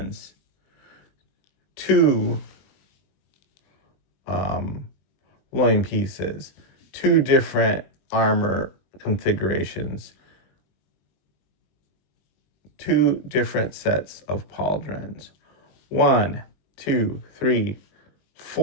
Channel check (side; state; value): right; late; 21 ms